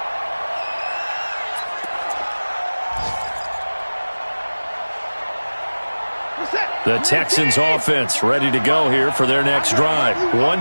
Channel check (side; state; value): both; inverted; correlation -1.00